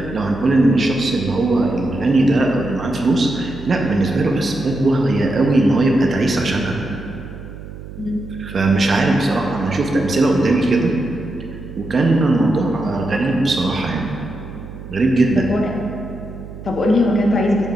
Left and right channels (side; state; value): right; noise; hum, 13 dB below the sound